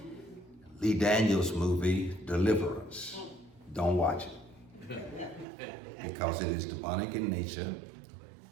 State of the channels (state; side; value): drops out; left; at 5.5 s